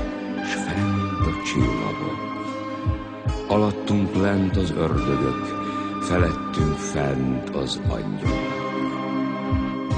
s fent a csillagok. Alattunk lent az ördögök, felettünk fent az angyalok.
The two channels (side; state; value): both; identical; correlation 1.00